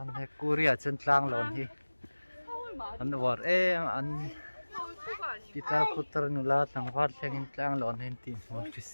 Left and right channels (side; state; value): both; inverted; correlation -1.00